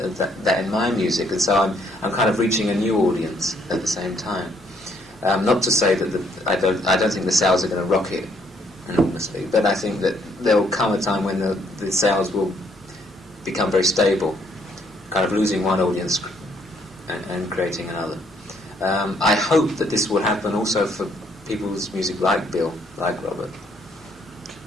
in my music, and so I'm kind of reaching a new audience at the same time. Not to say that I don't think the sales are going to rocket enormously, but I think that there will come a time when the sales will become very stable, kind of losing one audience and creating another. I hope that this will happen also for people's music like Bill, like Robert.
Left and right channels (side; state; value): both; normal; correlation 0.68